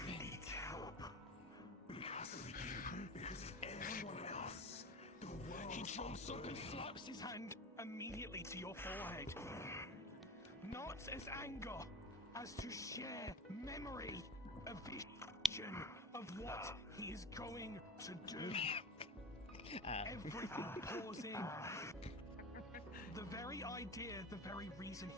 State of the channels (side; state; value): both; normal; correlation 0.32